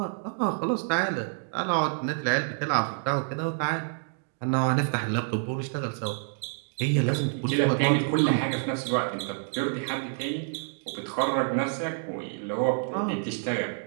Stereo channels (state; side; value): silent; left; digital silence